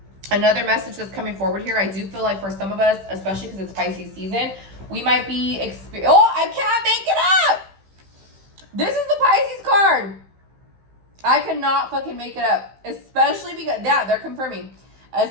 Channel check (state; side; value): late; left; 15 ms